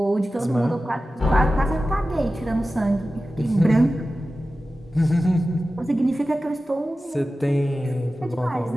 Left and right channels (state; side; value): normal; both; correlation 0.95